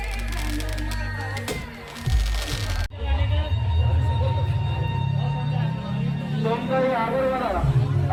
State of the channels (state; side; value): identical; both; correlation 1.00